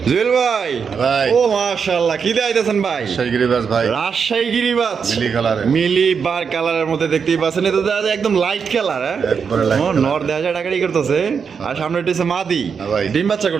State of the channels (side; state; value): left; quieter; 6.2 dB